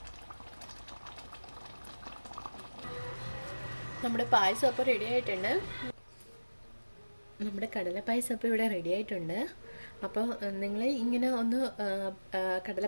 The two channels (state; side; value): inverted; both; correlation -1.00